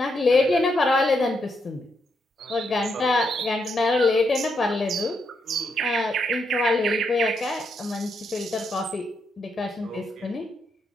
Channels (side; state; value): both; normal; correlation 0.80